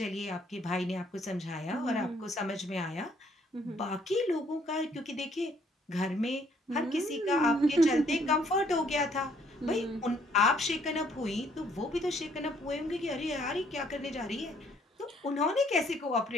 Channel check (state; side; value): normal; both; correlation 0.65